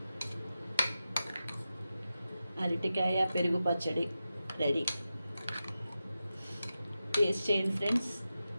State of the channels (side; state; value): both; inverted; correlation -0.91